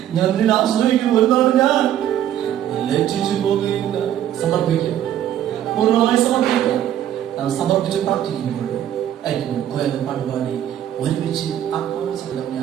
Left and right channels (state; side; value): quieter; left; 11.2 dB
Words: ഞാൻ നിന്നെ ആശ്രയിക്കുന്നു, ഒരു നാളും ഞാൻ ലജ്ജിച്ചു പോകുകയില്ല. സമർപ്പിക്കാം, പൂർണ്ണമായി സമർപ്പിക്കാം. നാം സമർപ്പിച്ച് പ്രാർത്ഥിക്കുമ്പോൾ അയക്കുമ്പോൾ കോയകൾ പാടുപാടി ഒരുമിച്ച് ആത്മാവസരം